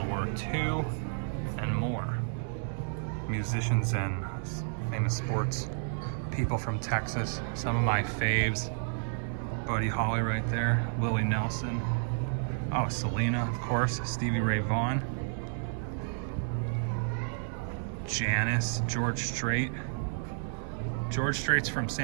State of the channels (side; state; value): left; silent; 57 dB below the other